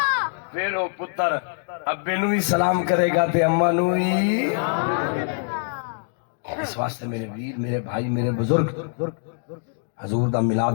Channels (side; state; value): right; silent; 63 dB below the other